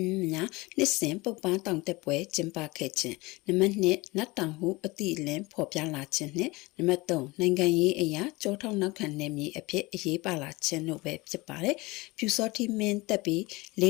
များနှစ်စဉ်ပုပ္ပါတောင်တက်ပွဲကျင်းပခဲ့ခြင်းနံပါတ်2နတ်တောင်ဟုအတိအလင်းဖော်ပြလာခြင်းနဲ့နံပါတ်3နိုင်ငံရေးအရာကြောထောက်နောက်ခံနယ်မြေအဖြစ်အရေးပါလာခြင်းတို့ပဲဖြစ်ပါတယ်ပြူစောတိမင်းတက်ပြီး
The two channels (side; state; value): right; quieter; 22.8 dB